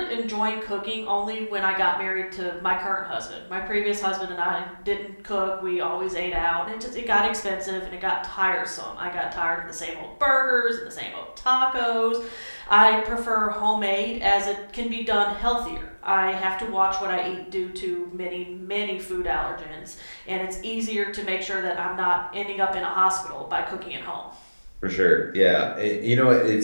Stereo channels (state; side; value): inverted; both; correlation -1.00